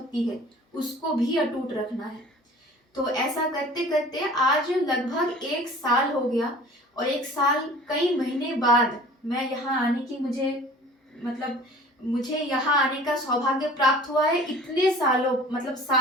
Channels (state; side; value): normal; both; correlation 0.46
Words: है उसको भी अटूट रखना है। तो ऐसा करते करते आज लगभग 1 साल हो गया और 1 साल कई महीने बाद मैं यहाँ आने की मुझे यहाँ आने का सौभाग्य प्राप्त हुआ है। इतने सालों मतलब